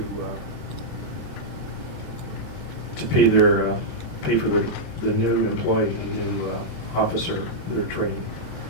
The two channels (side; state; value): both; normal; correlation -0.07